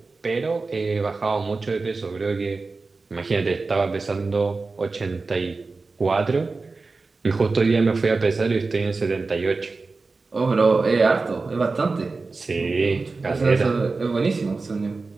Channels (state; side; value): quieter; left; 3.9 dB